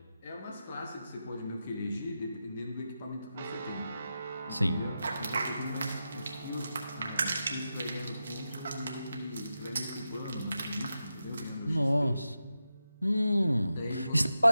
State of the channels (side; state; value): both; inverted; correlation -0.90